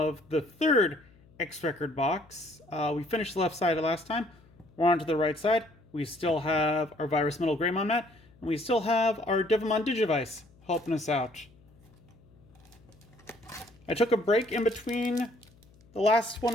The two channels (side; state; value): left; noise; hum, 28 dB below the sound